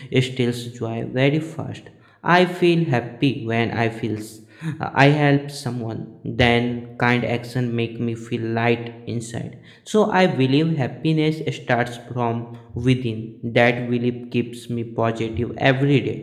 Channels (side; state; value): both; identical; correlation 1.00